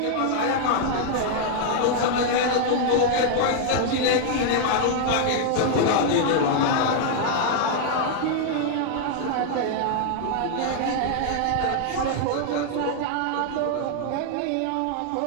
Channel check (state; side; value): different; both; correlation 0.00